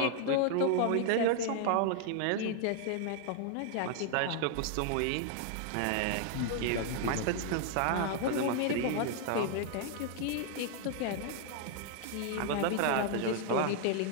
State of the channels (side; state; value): both; different; correlation 0.00